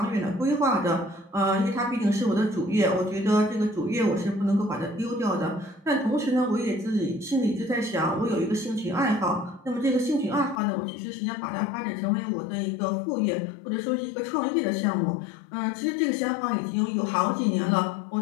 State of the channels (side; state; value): right; drops out; at 10.6 s